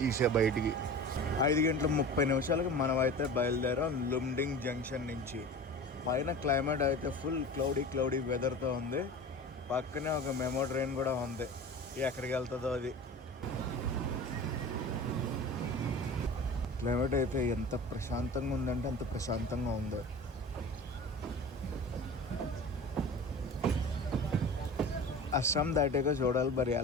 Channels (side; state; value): both; normal; correlation 0.36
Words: తీసే బయటికి. 5 గంటల 30 నిమిషాలకి మనం అయితే బయలుదేరాం లుమ్డింగ్ జంక్షన్ నుంచి. పైన క్లైమేట్ అయితే ఫుల్ క్లౌడీ వెదర్తో ఉంది. పక్కనే ఒక మెమో ట్రైన్ కూడా ఉంది, ఎక్కడికి వెళ్తుందో అది. క్లైమేట్ అయితే ఎంత ప్రశాంతంగా ఉందంటే అంత ప్రశాంతంగా ఉంది. అస్సాం దాటాక చూడాలి మరి